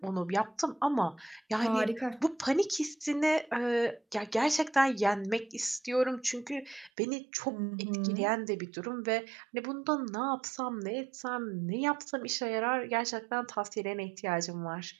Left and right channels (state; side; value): drops out; left; at 6.9 s